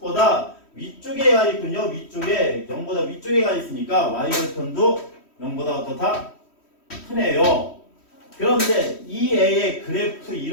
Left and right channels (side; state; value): right; late; 3.1 ms